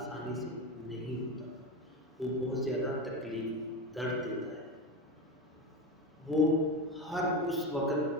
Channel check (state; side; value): normal; both; correlation 0.20